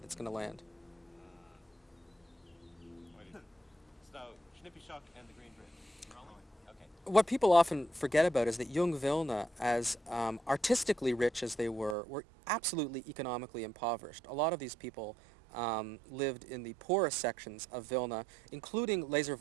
that's going to land. So, Schnippischock and the Green Bridge. Okay. What people often forget about is that Jung Vilna, as artistically rich as they were absolutely economically impoverished. A lot of these people lived in the poorest sections of Vilna, including Lazer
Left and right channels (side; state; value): left; drops out; at 12.0 s